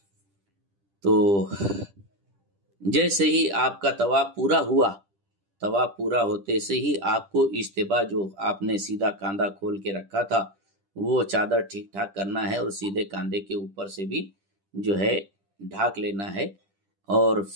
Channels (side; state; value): left; late; 10 ms